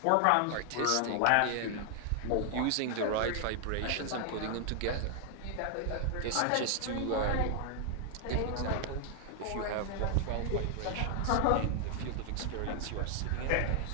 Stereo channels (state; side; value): different; both; correlation 0.00